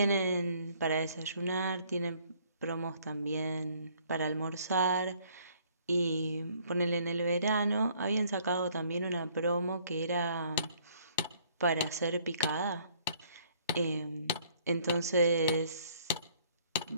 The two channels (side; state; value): both; inverted; correlation -0.62